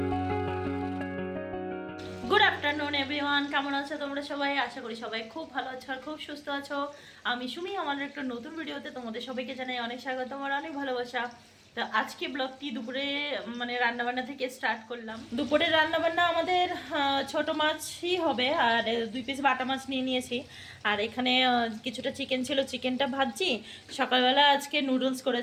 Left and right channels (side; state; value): both; identical; correlation 1.00